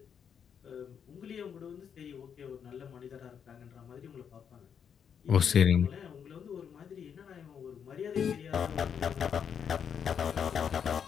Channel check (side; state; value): right; quieter; 7.6 dB